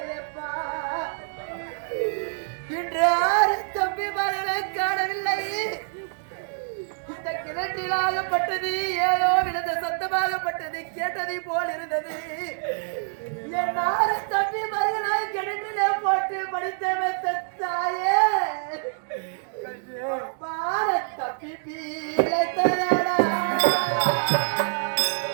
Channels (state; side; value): silent; left; digital silence